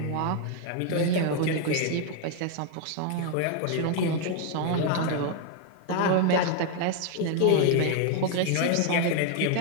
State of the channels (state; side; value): different; both; correlation 0.00